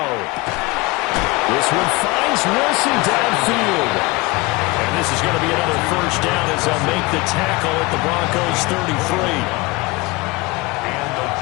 This one finds Wilson downfield. And this is going to be another first down as they'll make the tackle at the Broncos 33. And the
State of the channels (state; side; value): quieter; right; 23.2 dB